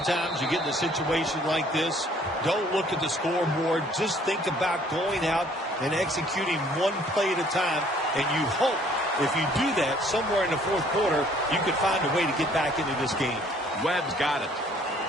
you get in a situation like this. Don't look at the scoreboard. Just think about going out and executing one play at a time. And you hope if you do that somewhere in the 4th quarter, you can find a way to get back into this game. Webb's got it.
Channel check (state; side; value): normal; both; correlation 0.59